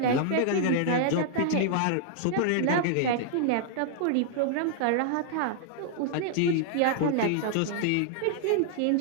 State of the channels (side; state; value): both; different; correlation 0.00